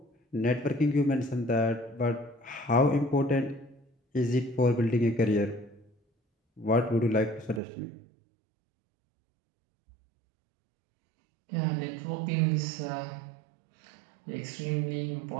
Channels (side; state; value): left; drops out; at 7.6 s